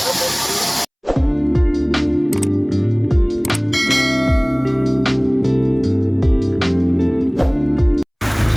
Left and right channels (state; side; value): identical; both; correlation 1.00